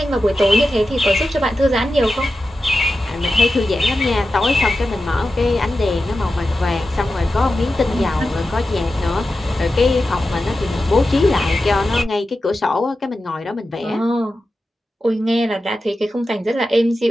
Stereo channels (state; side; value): normal; both; correlation 0.92